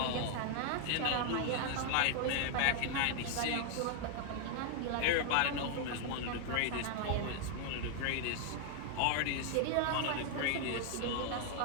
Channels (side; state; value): both; different; correlation 0.00